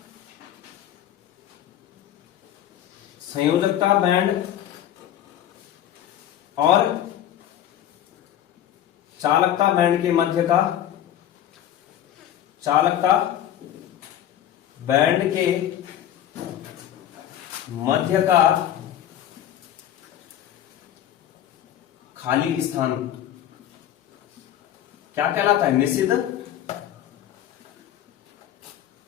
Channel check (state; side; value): quieter; right; 11.3 dB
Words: संयोजकता बैंड और चालकता बैंड के मध्य का, चालकता बैंड के मध्य का खाली स्थान क्या कहलाता है? निषिद्ध